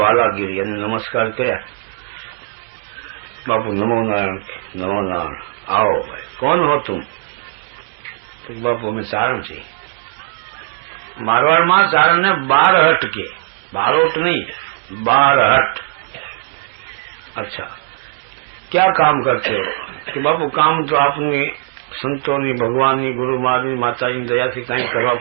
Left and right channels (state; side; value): silent; left; digital silence